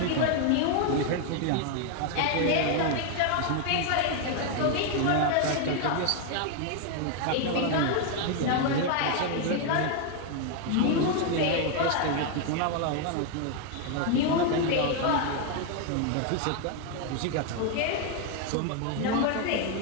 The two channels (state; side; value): different; both; correlation 0.01